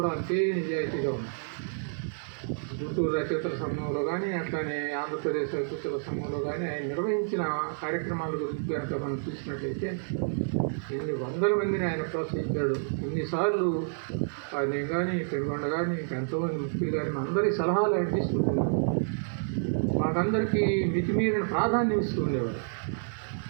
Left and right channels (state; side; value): silent; left; digital silence